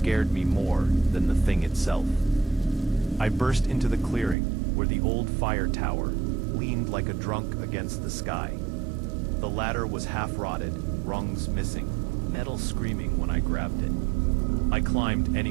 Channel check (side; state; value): left; drops out; at 4.4 s